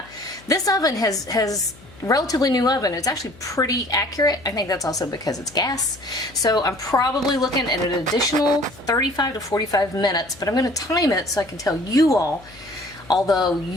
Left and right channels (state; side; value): noise; left; hum, 23 dB below the sound